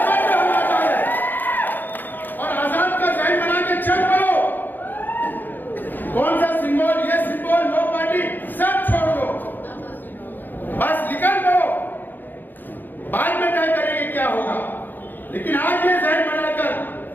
समझ लो हम आजाद हैं, और आजाद का जहन बना के चल पड़ो। कौन सा सिंबल, ये सिंबल, वो पार्टी, सब छोड़ दो, बस निकल दो, बाद में तय करेंगे क्या होगा। लेकिन आज ये जहन बनाकर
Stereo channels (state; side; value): late; right; 0.089 ms